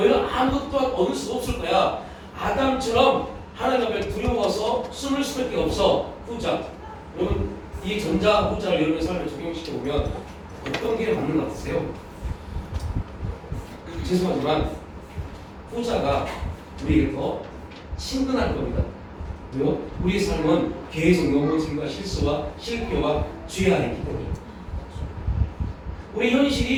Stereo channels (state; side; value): identical; both; correlation 1.00